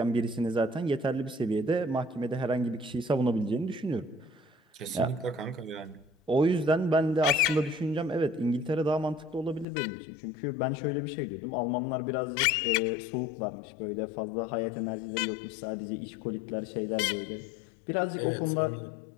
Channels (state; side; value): drops out; right; at 9.7 s